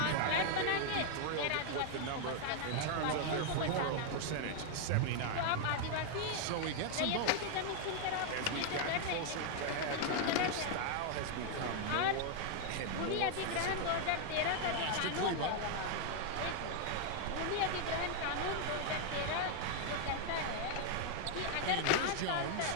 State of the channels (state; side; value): different; both; correlation 0.00